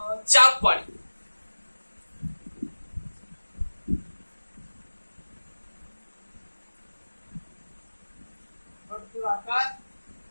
ચાપ વાળી. વર્તુળાકાર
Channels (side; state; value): both; inverted; correlation -1.00